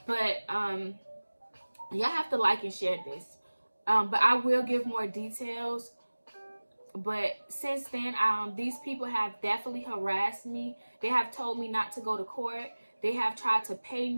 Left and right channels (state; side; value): inverted; both; correlation -1.00